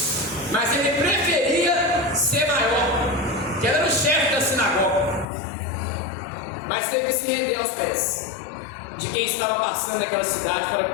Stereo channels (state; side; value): drops out; right; at 5.2 s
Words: mas ele preferia ser maior, que ele era o chefe da sinagoga, mas teve que se render aos pés de quem estava passando naquela cidade para